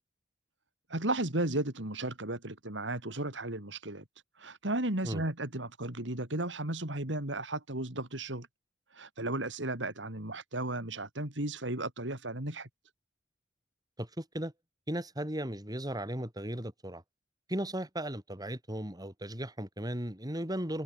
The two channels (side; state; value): both; normal; correlation 0.35